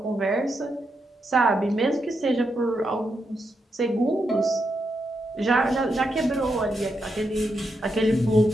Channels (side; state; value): both; normal; correlation 0.83